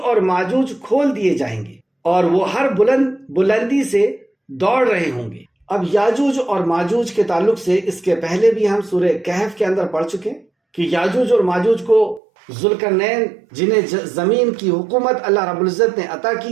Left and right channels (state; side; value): drops out; left; at 12.2 s